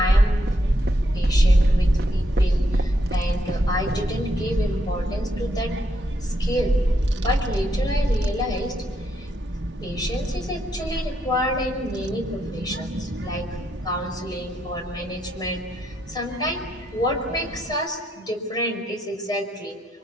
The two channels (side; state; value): both; normal; correlation 0.77